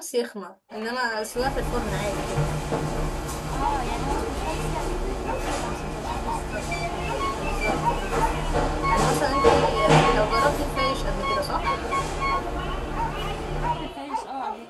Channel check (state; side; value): identical; both; correlation 1.00